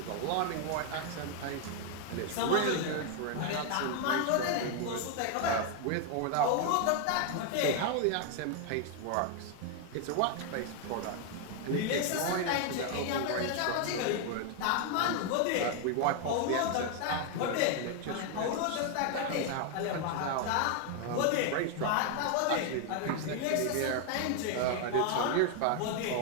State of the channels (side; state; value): both; different; correlation 0.01